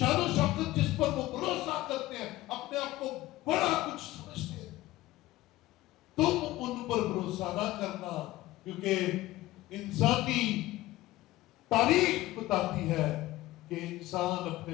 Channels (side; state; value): right; quieter; 17.2 dB